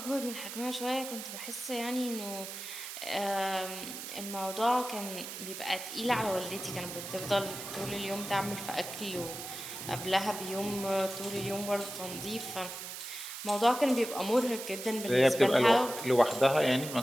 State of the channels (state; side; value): noise; right; hiss, 8 dB below the sound